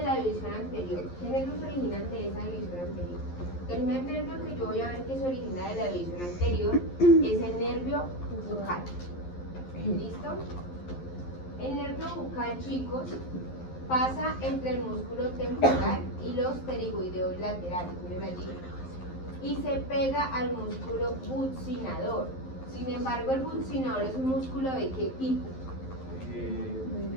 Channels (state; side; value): late; right; 11 ms